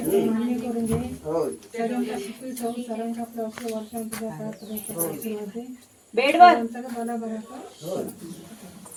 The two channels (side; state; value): both; identical; correlation 1.00